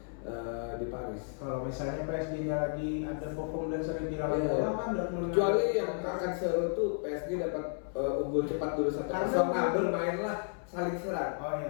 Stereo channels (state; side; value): silent; right; 56 dB below the other